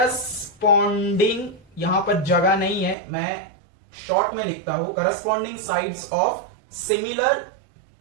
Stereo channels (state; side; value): drops out; left; at 3.0 s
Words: यहां पर जगह नहीं है, मैं शॉर्ट में लिखता हूं, corresponding sides of similar